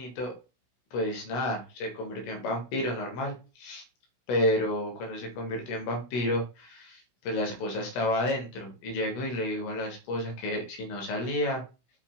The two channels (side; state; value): right; late; 16 ms